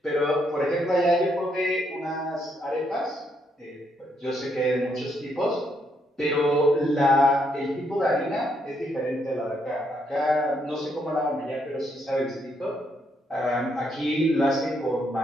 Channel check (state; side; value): normal; both; correlation 0.75